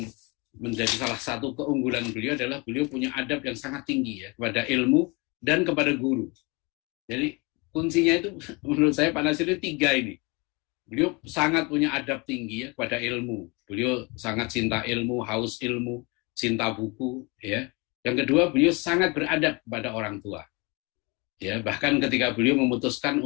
menjadi salah satu keunggulan beliau adalah beliau punya adab yang sangat tinggi ya kepada ilmu dan kepada guru. Jadi kuncinya itu menurut saya Pak Natsir itu 3 ini. Beliau sangat punya adab tinggi ya kepada ilmu. Beliau sangat cinta ilmu, haus ilmu, cinta buku ya. Yang kedua, beliau sangat beradab kepada orang tua. Ya, bahkan ketika beliau memutuskan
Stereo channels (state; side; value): quieter; right; 28.3 dB